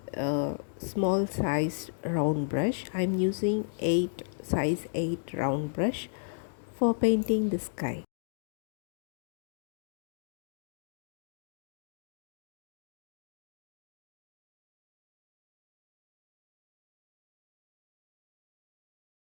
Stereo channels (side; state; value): right; silent; digital silence